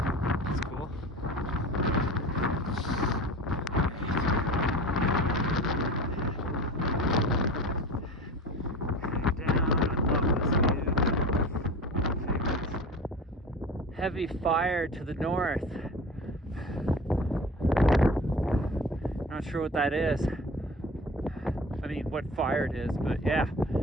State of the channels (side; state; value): both; normal; correlation 0.35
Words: That's cool. Down, I love this view. Heavy fire to the north. Not sure what that is. I mean, what fire it is, but yeah,